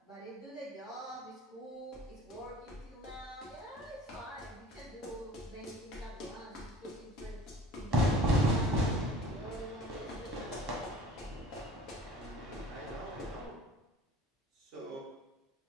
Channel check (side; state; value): both; normal; correlation 0.44